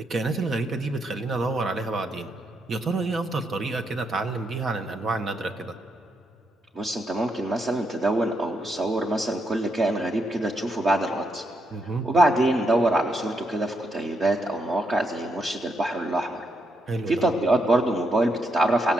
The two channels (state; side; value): normal; both; correlation 0.79